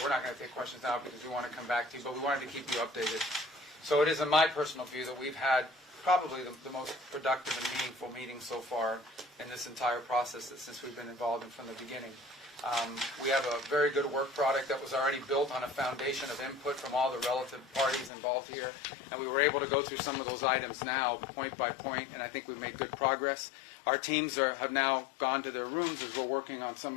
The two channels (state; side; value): drops out; right; at 18.1 s